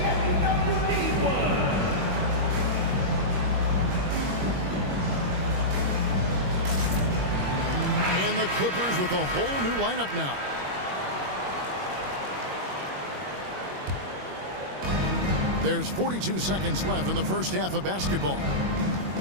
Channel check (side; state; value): left; late; 21 ms